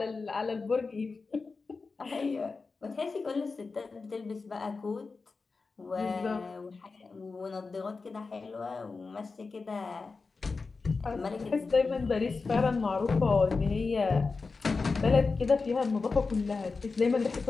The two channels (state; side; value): quieter; right; 4.3 dB